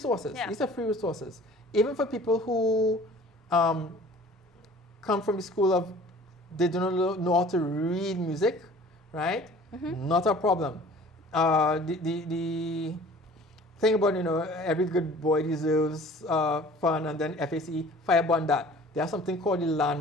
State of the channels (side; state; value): both; normal; correlation 0.48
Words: Yeah. These are free resources. Even for people who come from the school of they do not know how to read music, right? Not a problem. The thing about, every good boy deserves fun, and then FACE, fireburn that. There's something called the